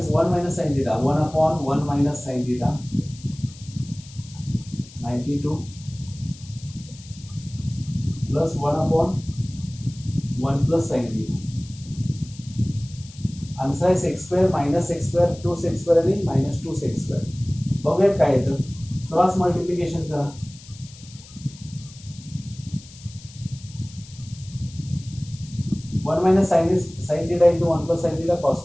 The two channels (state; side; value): noise; left; hiss, 20 dB below the sound